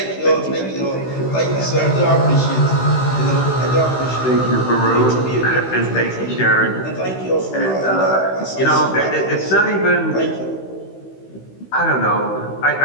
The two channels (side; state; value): right; late; 16 ms